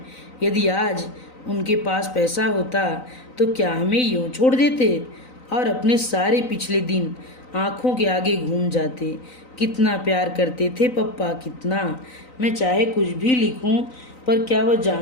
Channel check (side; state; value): right; late; 3.9 ms